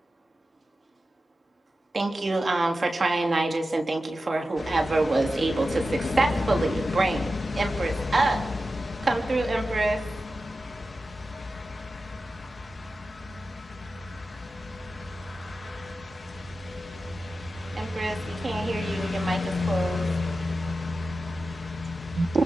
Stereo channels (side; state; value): both; normal; correlation 0.92